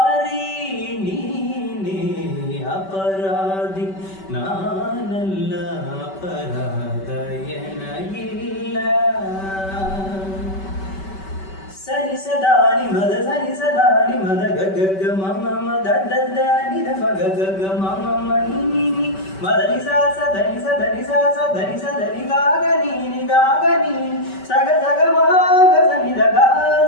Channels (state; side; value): late; right; 5.2 ms